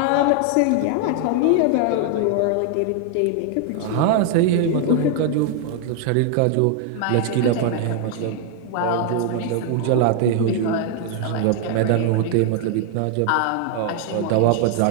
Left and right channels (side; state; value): both; different; correlation 0.00